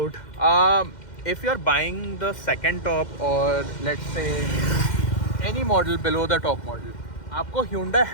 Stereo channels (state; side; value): late; right; 2.1 ms